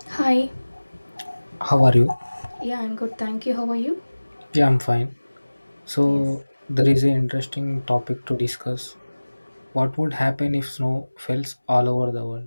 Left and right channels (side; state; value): both; inverted; correlation -1.00